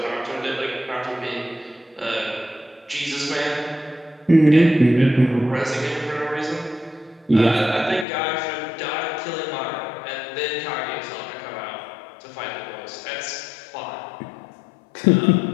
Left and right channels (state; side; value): drops out; right; at 8.1 s